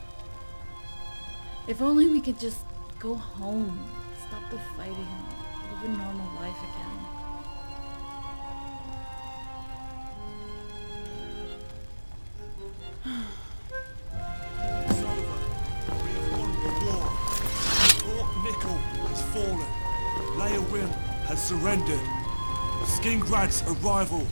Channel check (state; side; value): inverted; both; correlation -1.00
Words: If only we could just go home, stop the fighting, live a normal life again. It's over. We have won the war. Fort Nickel has fallen. Leowin has surrendered. Skingrad's arrival